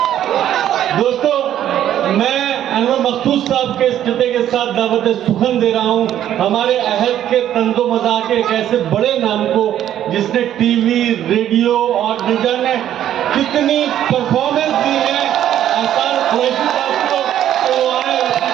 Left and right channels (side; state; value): left; quieter; 11.2 dB